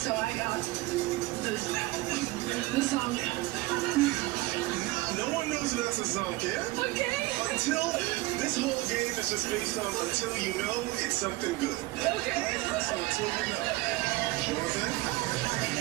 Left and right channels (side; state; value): left; quieter; 19.9 dB